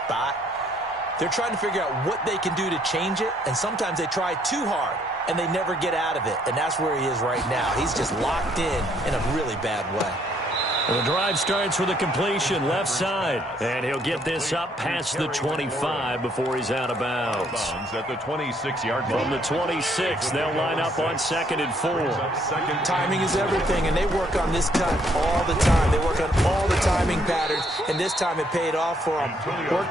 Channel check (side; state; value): both; normal; correlation 0.67